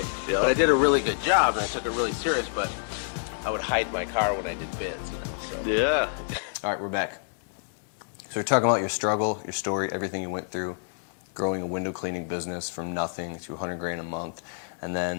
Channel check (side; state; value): right; silent; digital silence